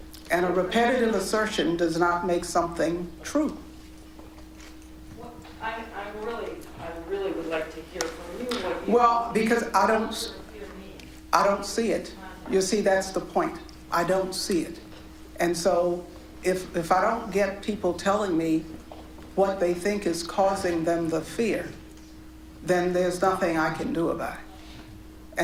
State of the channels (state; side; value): identical; both; correlation 1.00